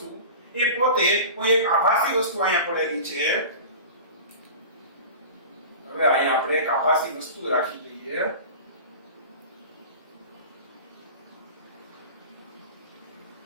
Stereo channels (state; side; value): inverted; both; correlation -0.34